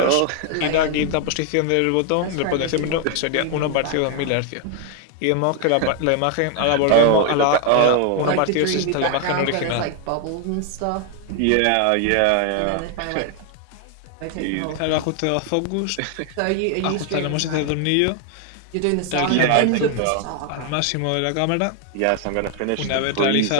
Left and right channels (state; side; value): different; both; correlation 0.00